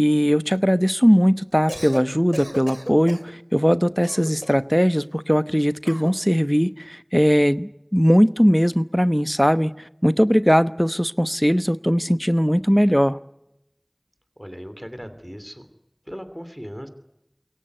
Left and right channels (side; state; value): both; identical; correlation 1.00